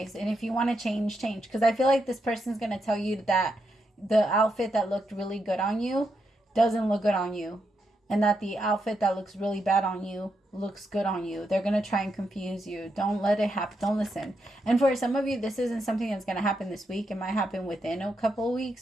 And if you want to change, change. Because I feel like this person's going to tell you that the outfit that looked really good on you doesn't look good on you. And that the outfit that looks really bad on you looks good on you. They're going to try and confuse you. Don't let it happen. Don't listen. And for some of you, this isn't something that's going to happen this week. It might happen within a couple of weeks.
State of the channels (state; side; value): normal; both; correlation 0.82